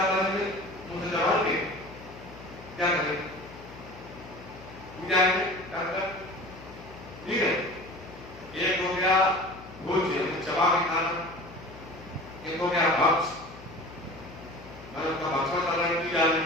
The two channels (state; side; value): noise; left; hum, 17 dB below the sound